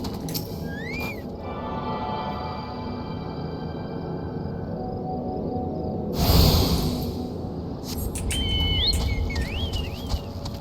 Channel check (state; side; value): identical; both; correlation 1.00